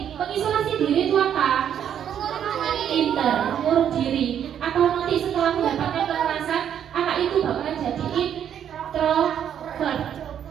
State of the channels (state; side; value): quieter; left; 9.3 dB